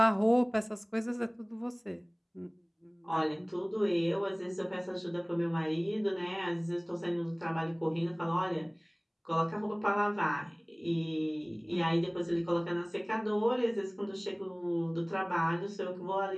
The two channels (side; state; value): both; identical; correlation 1.00